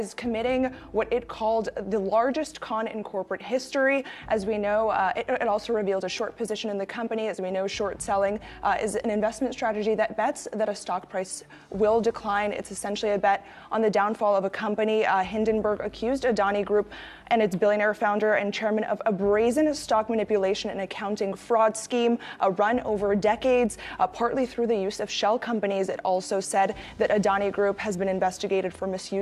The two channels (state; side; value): identical; both; correlation 1.00